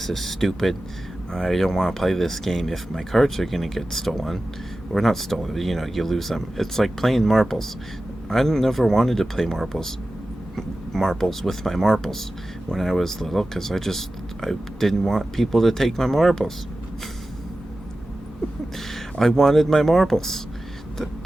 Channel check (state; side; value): normal; both; correlation 0.94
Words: is stupid. I don't want to play this game if my cards are gonna get stolen, or not stolen. You know, you lose them. It's like playing marbles. I never wanted to play marbles with my marbles when I was little because I didn't want people to take my marbles. I wanted my marbles.